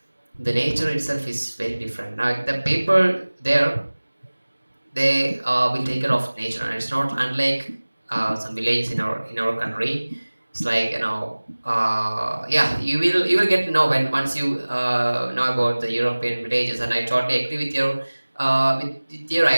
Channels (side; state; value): both; inverted; correlation -1.00